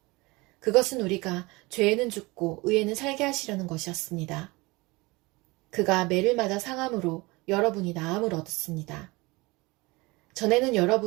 그것은 우리가 죄에는 죽고 의에는 살게 하시려는 것이었습니다. 그가 매를 맞아 상함으로 여러분이 나음을 얻었습니다. 전에는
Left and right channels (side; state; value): left; quieter; 23.7 dB